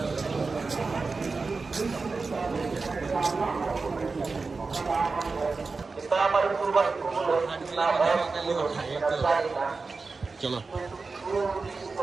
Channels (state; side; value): quieter; left; 4.2 dB